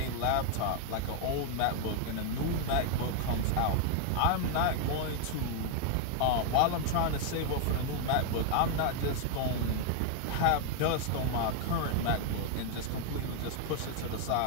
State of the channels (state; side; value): different; both; correlation 0.00